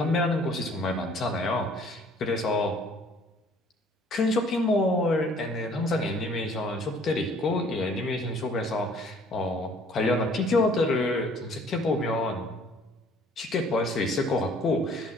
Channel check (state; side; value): normal; both; correlation 0.56